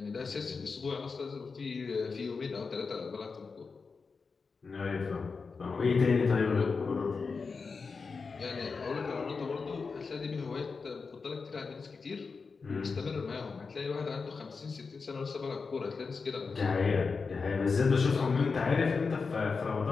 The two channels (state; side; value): quieter; right; 4.8 dB